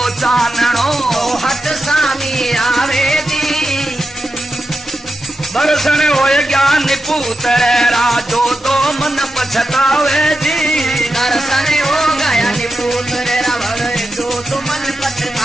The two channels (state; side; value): normal; both; correlation 0.89